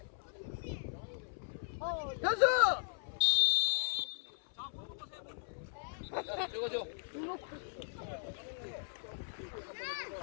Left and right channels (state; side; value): silent; right; 53 dB below the other